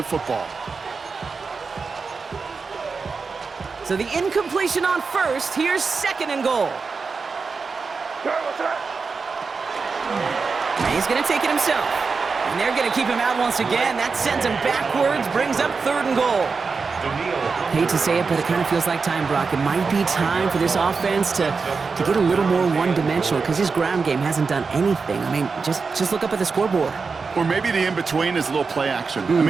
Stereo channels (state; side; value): quieter; left; 4.8 dB